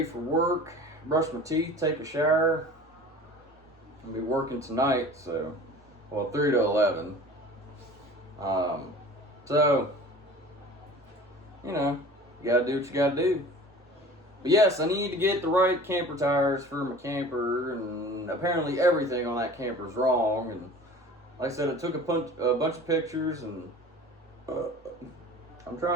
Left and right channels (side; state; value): both; normal; correlation 0.42